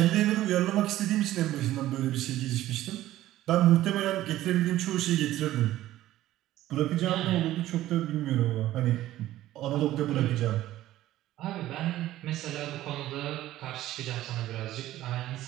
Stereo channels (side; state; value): left; quieter; 14.6 dB